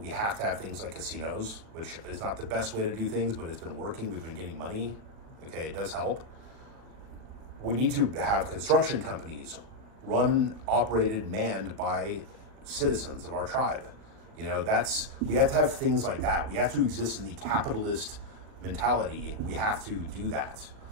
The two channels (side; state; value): left; late; 38 ms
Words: have to have things like casinos, which is not the best way to do things, but it's been working. We've been getting money, okay? It does help. We need to have construction companies run, operated, manned by citizens of our tribe. We have to have things like that. We have to exist in the capitalist mentality. We have to do that.